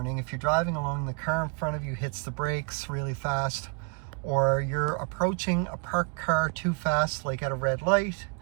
if you're driving along, the car in front of you hits the brakes really fast, or you're approaching a parked car too fast, like at a red light,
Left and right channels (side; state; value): left; quieter; 35.6 dB